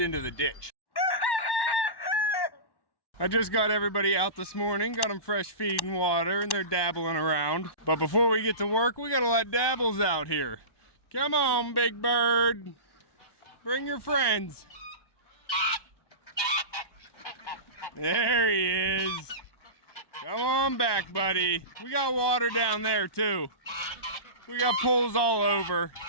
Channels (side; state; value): right; late; 1.1 ms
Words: the ditch. I just got everybody out this morning, got them fresh feed and water, and they're dabbling around. But before we get to work, we gotta let Dabbles out here. Come on, big bird. Bring your friends. There he is. Come on back, buddy. We got water down there too. We got pools all over.